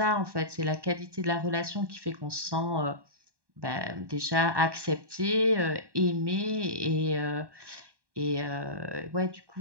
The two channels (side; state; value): left; late; 1.1 ms